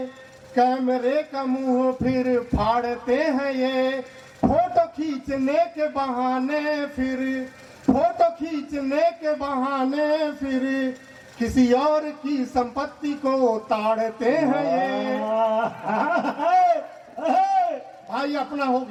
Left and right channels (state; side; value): identical; both; correlation 1.00